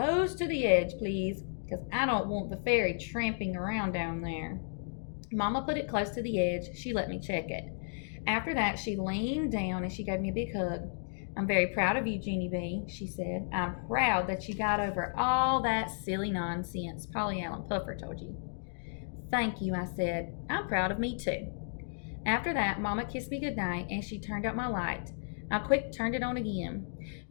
to the edge, please, because I don't want the fairy tramping around down there. Mama put it close to the edge. She let me check it. After that, she leaned down and she gave me a big hug. I'm very proud of you, Junie B., she said. I'm proud that you got over all that silly nonsense Polly Allen Puffer told you. Thank you, I said. I'm proud of me, too. After that, Mama kissed me goodnight and she turned out my light. I quick turned it on again.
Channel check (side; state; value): right; silent; digital silence